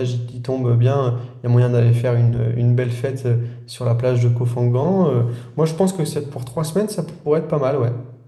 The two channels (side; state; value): both; identical; correlation 1.00